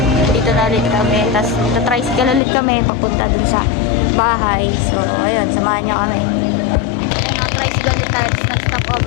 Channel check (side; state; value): right; drops out; at 2.4 s